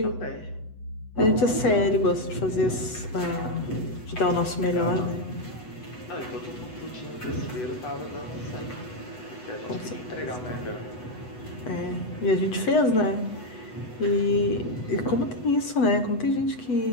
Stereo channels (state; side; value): late; right; 8.1 ms